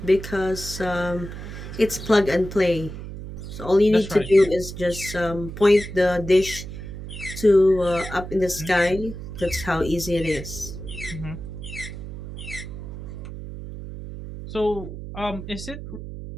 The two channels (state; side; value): noise; right; hum, 10 dB below the sound